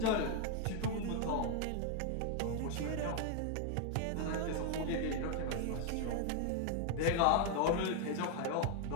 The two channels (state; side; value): different; both; correlation 0.00